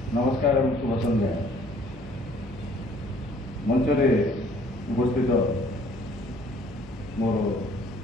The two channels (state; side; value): noise; left; hum, 19 dB below the sound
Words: नमस्कार और शुभ संध्या। मंचरे उपस्थित मोर